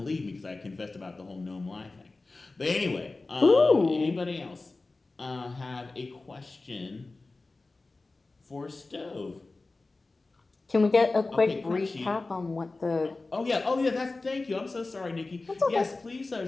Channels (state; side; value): quieter; right; 3.4 dB